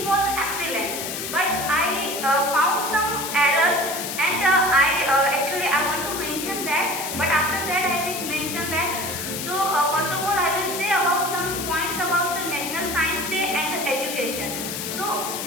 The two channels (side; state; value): left; noise; hiss, 5 dB below the sound